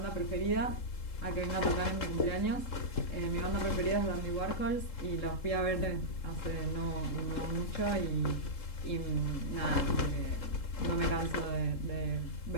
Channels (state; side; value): late; right; 3.7 ms